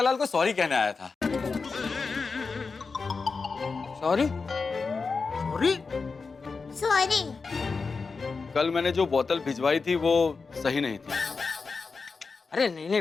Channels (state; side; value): quieter; right; 4.6 dB